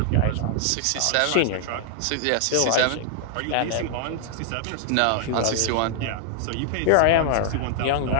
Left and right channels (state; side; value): different; both; correlation -0.01